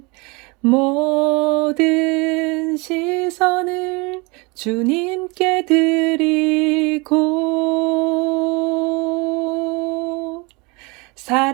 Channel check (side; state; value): left; quieter; 28.0 dB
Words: 모든 시선을 주님께 드리고